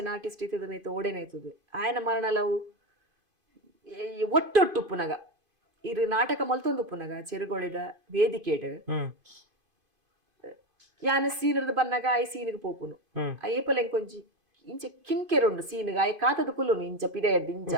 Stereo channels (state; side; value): late; left; 2.5 ms